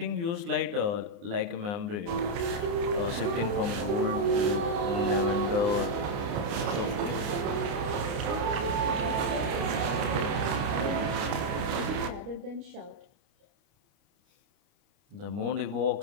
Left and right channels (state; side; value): late; left; 29 ms